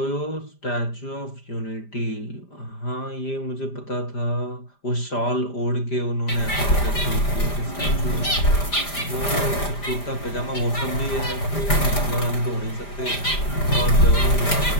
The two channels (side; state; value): right; late; 5.0 ms